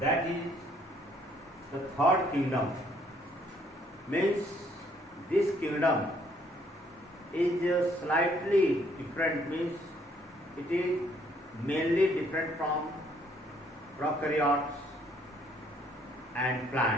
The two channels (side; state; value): both; normal; correlation 0.65